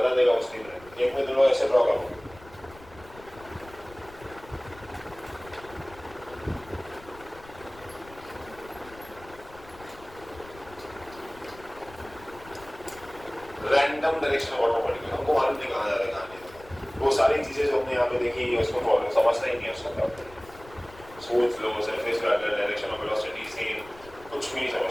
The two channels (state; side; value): noise; left; rumble, 21 dB below the sound